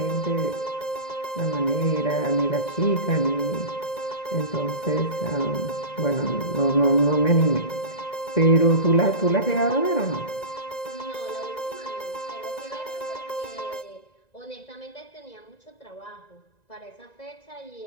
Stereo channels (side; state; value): right; late; 1.9 ms